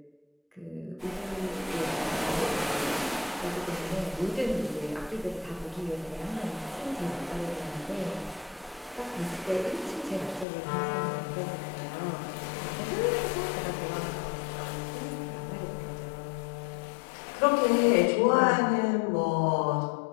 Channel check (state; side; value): drops out; right; at 10.5 s